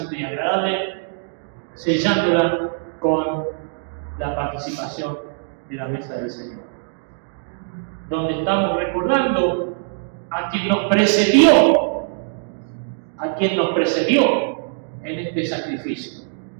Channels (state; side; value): silent; left; digital silence